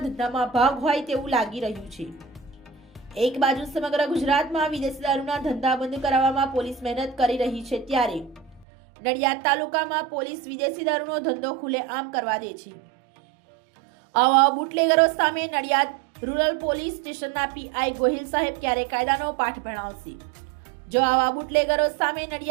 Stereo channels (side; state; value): left; drops out; at 8.7 s